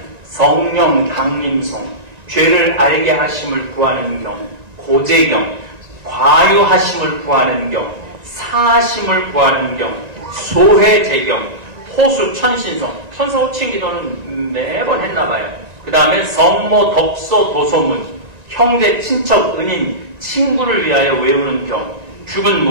성령 강림송, 죄를 알게 하심을 구하는 경, 고제경, 과유하심을 구하는 경, 사하심을 구하는 경, 소회제경, 호수 천신성, 천사호칭 기도는 매번 했나봐요. 그 다음에 성모 덕소 도소문, 형제 친척 은인 친구를 위하여 외우는 경, 죽은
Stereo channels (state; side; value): late; left; 1.9 ms